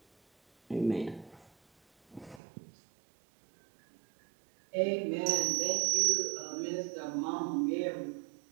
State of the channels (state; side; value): drops out; left; at 2.4 s